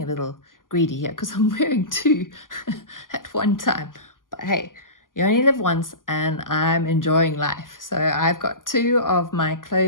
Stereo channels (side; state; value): right; late; 0.90 ms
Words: a little greedy here because I'm wearing two at one time, but hey, you only live once and I'm enjoying life. So I've got two of my